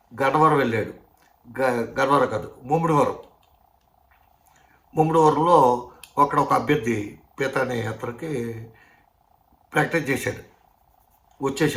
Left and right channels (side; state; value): both; identical; correlation 1.00